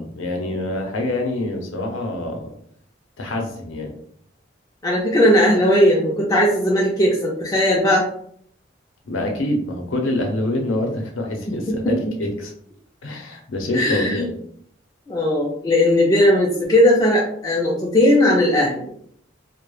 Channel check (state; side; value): normal; both; correlation 0.48